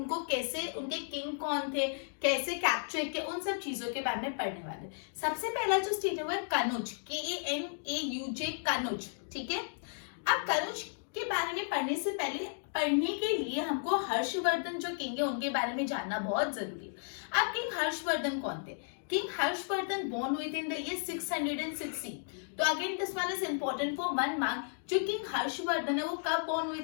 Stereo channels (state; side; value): silent; right; digital silence